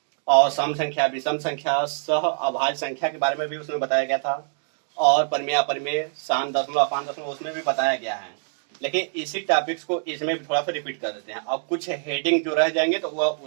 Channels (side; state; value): left; silent; 62 dB below the other